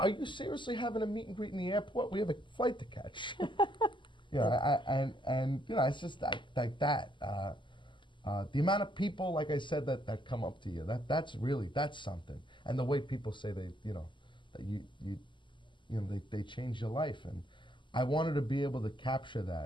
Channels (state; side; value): late; right; 0.24 ms